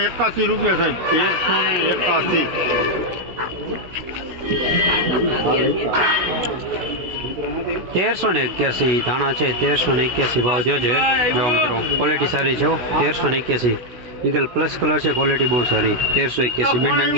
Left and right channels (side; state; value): left; late; 16 ms